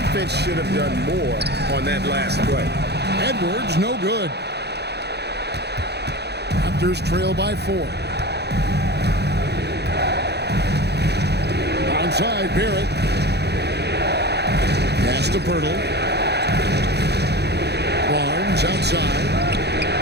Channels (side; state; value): left; late; 0.48 ms